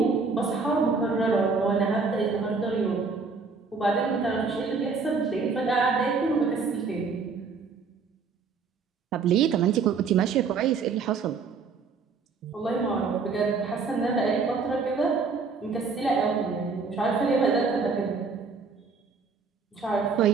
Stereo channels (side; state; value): left; quieter; 4.8 dB